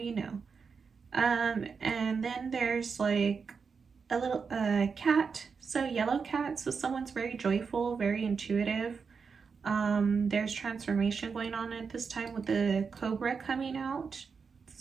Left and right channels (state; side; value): quieter; left; 5.5 dB